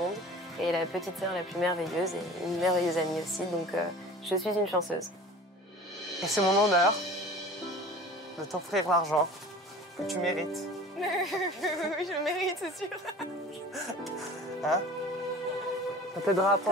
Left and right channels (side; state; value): both; normal; correlation 0.41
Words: Et la petite sœur la plus merveilleuse et une merveilleuse amie aussi, donc je suis une chanceuse. Et c'est mon honneur de t'offrir l'argent que tu mérites. Oui, je le mérite, c'est sûr. Hein? Ça t'aidera à